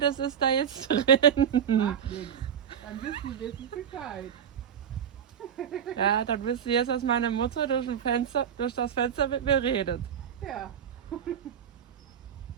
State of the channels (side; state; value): left; quieter; 8.4 dB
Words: ist da jetzt drin. Macht nichts. Dann wissen wir Bescheid. Ja, dann wisst ihr jetzt, dass meine Mutter durch das Fenster mit mir redet. Ja.